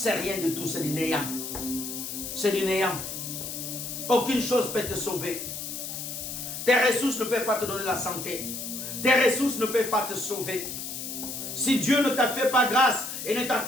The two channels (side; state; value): left; noise; hiss, 6 dB below the sound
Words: rien de tout, c'est du néant. C'est du néant. Aucune chose peut te sauver. Tes ressources ne peuvent pas te donner la santé. Tes ressources ne peuvent pas te sauver. Si Dieu ne t'a fait pas grâce et ne